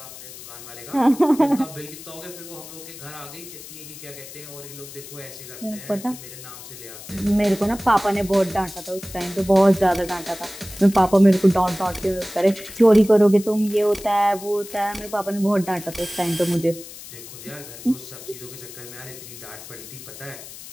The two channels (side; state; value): left; noise; hiss, 14 dB below the sound